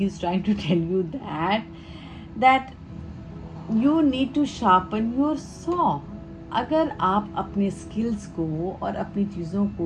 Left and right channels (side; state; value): both; identical; correlation 1.00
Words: you that you need to sharpen your saw. अगर आप अपने skills को और अपनी चीज़ों